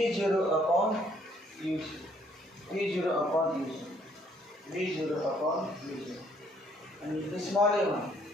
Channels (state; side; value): normal; both; correlation 0.65